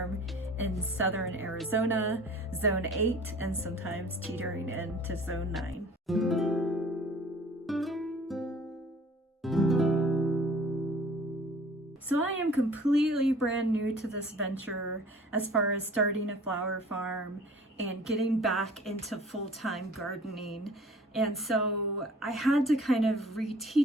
in southern Arizona, zone 8, and sometimes teetering into zone 9. So I am completely brand new to this venture as far as starting a flower farm and getting back into full-time gardening. And so I had to kind of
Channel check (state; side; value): normal; both; correlation 0.49